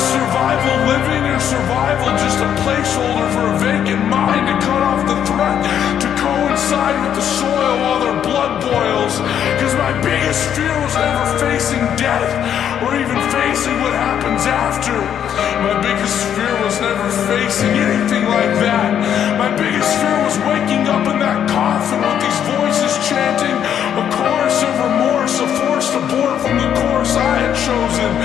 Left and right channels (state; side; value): quieter; right; 9.3 dB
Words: survival living, or survival just a placeholder for a vacant mind to cut off the threat, to coincide with the soil while their blood boils? Cause my biggest fear was never facing death, or even facing what happens after. My biggest fear was never facing anything like that. My biggest fear was waking up in that coffin with these voices chanting a chorus of remorse, a forced abort from the course I had chosen.